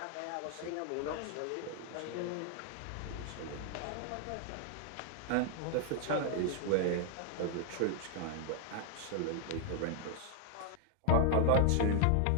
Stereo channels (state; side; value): different; both; correlation 0.00